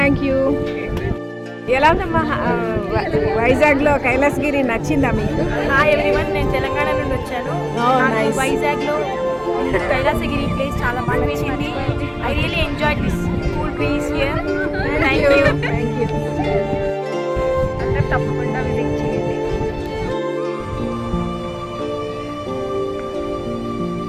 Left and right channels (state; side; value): identical; both; correlation 1.00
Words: you. ఎలా ఉందమ్మా వైజాగ్లో కైలాసగిరి? నచ్చిందా మీకు? హాయ్ ఎవ్రీవన్, నేను తెలంగాణ నుండి వచ్చాను. Oh, నాకు nice. వైజాగ్లో కైలాసగిరి ప్లేస్ చాలా బాగా నచ్చింది. I really enjoy this cool place here. Thank you. Thank you. అందరూ తప్పకుండా విజిట్ చేయండి.